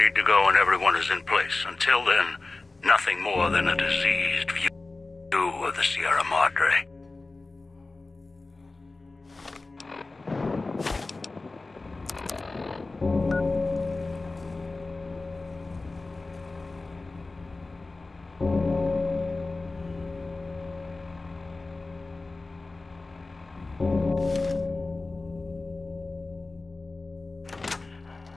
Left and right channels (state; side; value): quieter; right; 3.4 dB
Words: to go when everyone is in place. Until then, nothing more than a diseased view of the Sierra Madre.